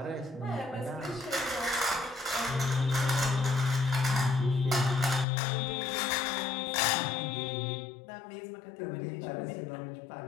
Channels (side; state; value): right; drops out; at 5.2 s